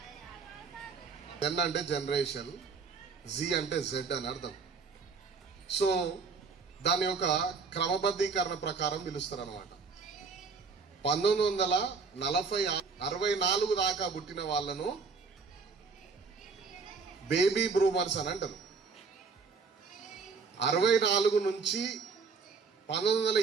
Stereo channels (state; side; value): quieter; left; 4.9 dB